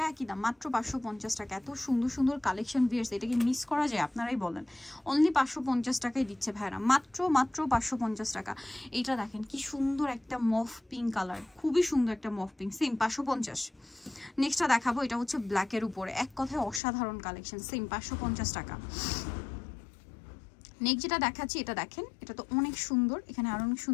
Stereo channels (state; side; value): drops out; right; at 16.8 s